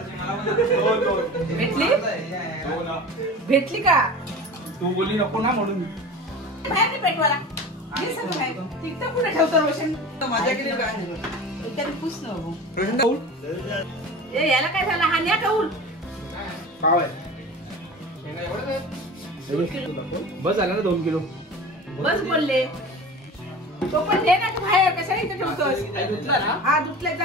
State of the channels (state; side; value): normal; both; correlation 0.35